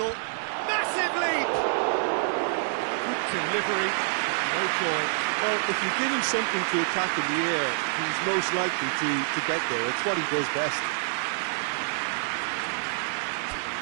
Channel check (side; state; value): left; silent; 60 dB below the other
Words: massive leap! Good delivery, no joy. Well, if you give him something to attack in the air, he's most likely to get there. It's what he does best.